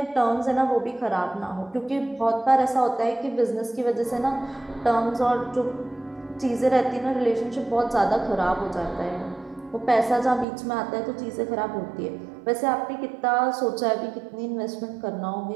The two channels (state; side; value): drops out; left; at 10.5 s